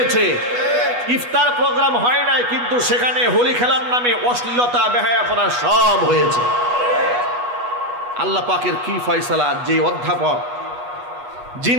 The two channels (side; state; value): left; late; 8.2 ms